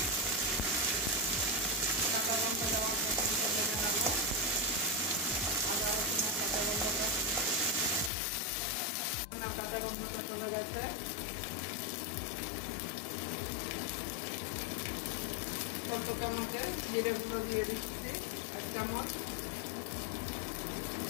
কাঁচা লঙ্কা দেওয়ার পর্যন্ত ভেজে নেব। আদা রসুনের কাঁচা গন্ধটা চলে গেছে। অল্প চামচে জিরের গুঁড়ো দিয়ে দিচ্ছি 1 চামচ,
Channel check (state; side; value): drops out; right; at 8.1 s